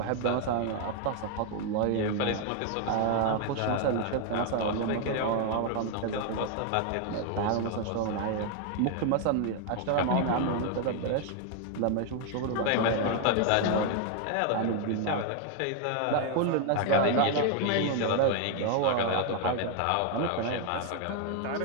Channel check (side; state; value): both; different; correlation 0.00